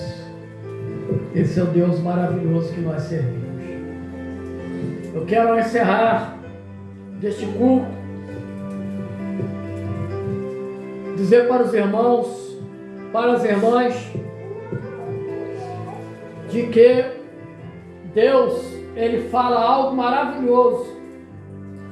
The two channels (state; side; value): identical; both; correlation 1.00